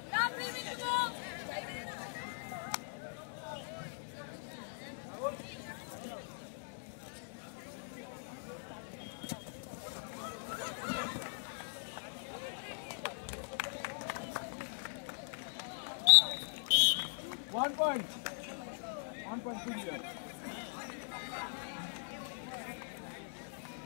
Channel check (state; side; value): silent; right; digital silence